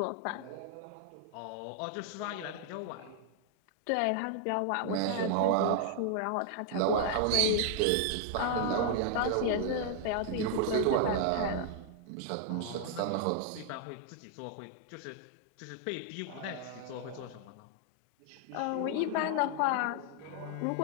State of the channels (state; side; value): different; both; correlation 0.00